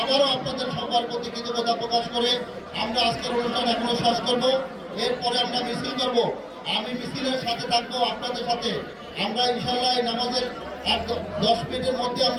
আবারও আপনাদের সবার প্রতি কৃতজ্ঞতা প্রকাশ করে আমরা আজকের অনুষ্ঠান এখনো শেষ করব। এরপরে আমরা মিছিল করব। আমি মিছিলের সাথে থাকবো, আপনাদের সাথে। আমরা ইনশাল্লাহ নামাজের 10 মিনিটের মধ্যে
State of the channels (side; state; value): both; identical; correlation 1.00